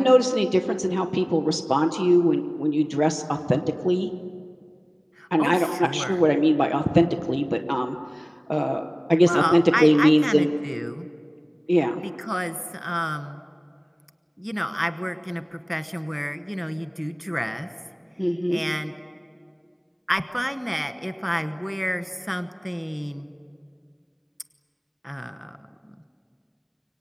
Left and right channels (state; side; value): identical; both; correlation 1.00